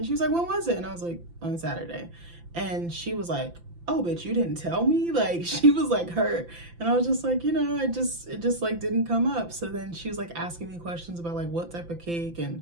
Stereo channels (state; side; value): late; left; 5.9 ms